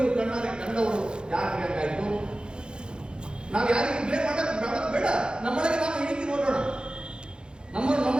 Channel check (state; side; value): late; left; 0.049 ms